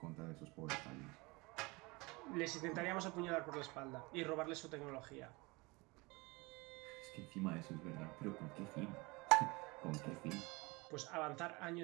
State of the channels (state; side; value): quieter; left; 25.1 dB